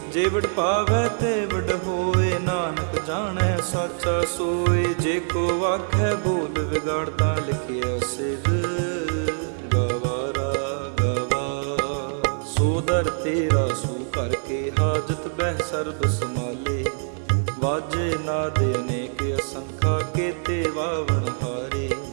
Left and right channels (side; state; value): left; silent; digital silence